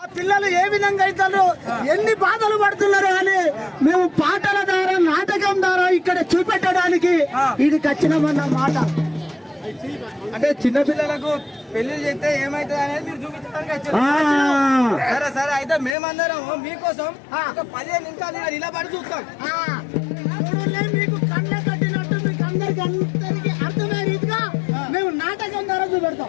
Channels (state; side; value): drops out; right; at 16.0 s